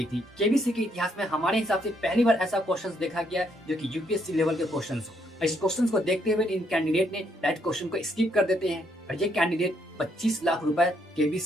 थी। केबीसी के इतिहास में हमारे हिसाब से पहली बार ऐसा क्वेश्चन देखा गया जो कि यूपीएससी लेवल के क्वेश्चन हो। इस क्वेश्चन को देखते हुए इन कैंडिडेट ने डायरेक्ट क्वेश्चन को स्किप कर देते हैं और ये कैंडिडेट 25 लाख रुपए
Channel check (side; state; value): both; normal; correlation 0.73